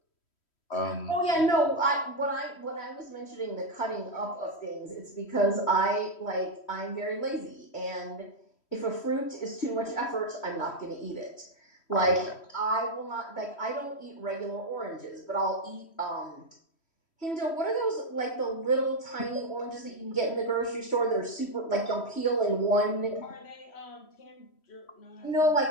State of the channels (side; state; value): right; late; 3.1 ms